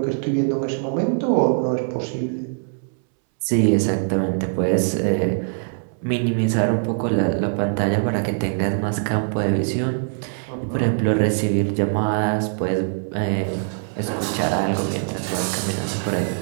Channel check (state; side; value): silent; left; 64 dB below the other